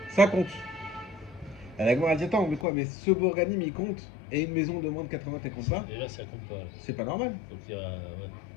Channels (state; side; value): drops out; right; at 2.7 s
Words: Ça compte. La Gemara dit attends, mais quoi, mais ce bourganim il compte, et une maison de moins de 80 elle compte pas? Et là, ça compte pas. C'est pas normal. Donc, il y a. Ouais.